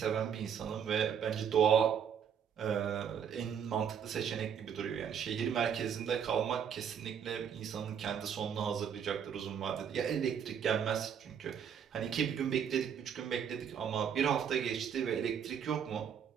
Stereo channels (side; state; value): left; quieter; 8.0 dB